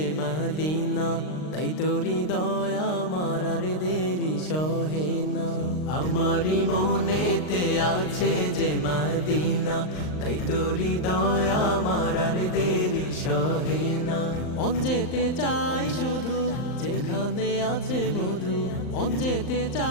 মদিনা, তাই তোরি দয়া আমার আর দেরি সহে না। আমারি মনেতে আছে যে মদিনা, তাই তোরি দয়া আমার আর দেরি সহে না। মন যেতে চাই শুধু যেখানে আছে মধু, মন যেতে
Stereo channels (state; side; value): late; right; 39 ms